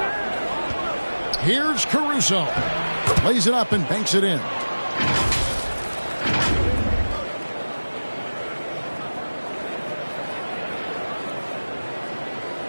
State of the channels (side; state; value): both; inverted; correlation -1.00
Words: Here's Caruso. Lays it up and banks it in.